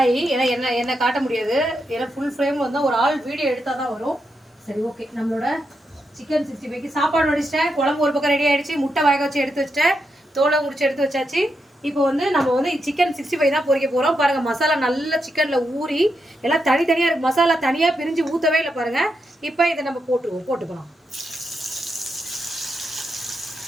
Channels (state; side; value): normal; both; correlation 0.84